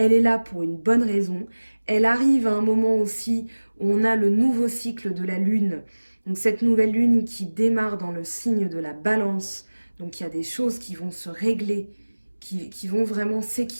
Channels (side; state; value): both; inverted; correlation -1.00